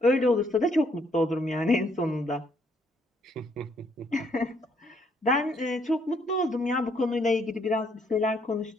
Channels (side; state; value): both; normal; correlation 0.69